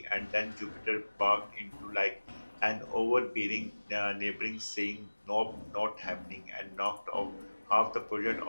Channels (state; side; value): inverted; both; correlation -1.00